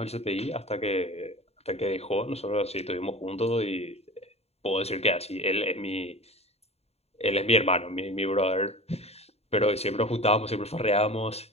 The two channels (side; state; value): right; late; 0.30 ms